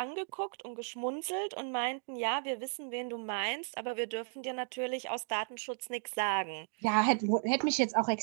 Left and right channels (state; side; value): silent; left; 55 dB below the other